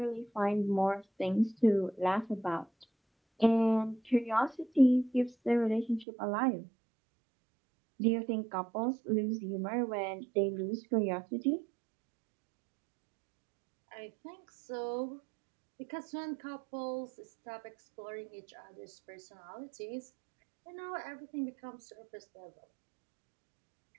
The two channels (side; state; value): left; drops out; at 6.1 s